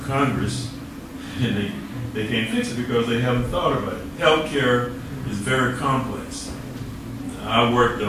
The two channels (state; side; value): identical; both; correlation 1.00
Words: Congress, and they can't fix it because they haven't thought about it. Health care is very complex. I worked